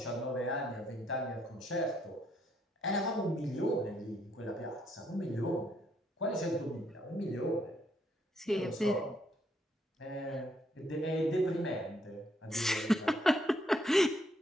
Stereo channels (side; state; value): both; normal; correlation 0.72